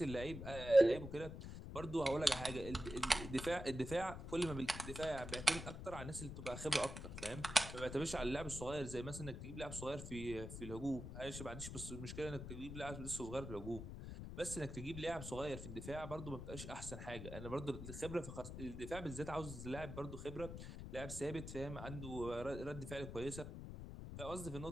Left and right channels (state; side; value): noise; left; rumble, 8 dB below the sound